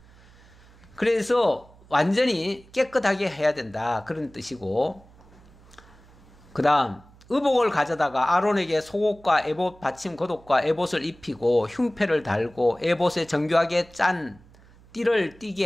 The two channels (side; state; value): right; noise; hum, 25 dB below the sound